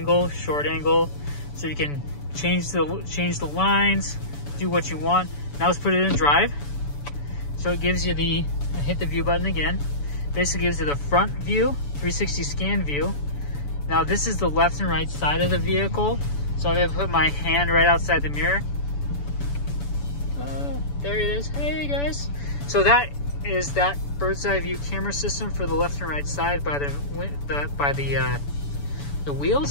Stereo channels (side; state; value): right; late; 7.0 ms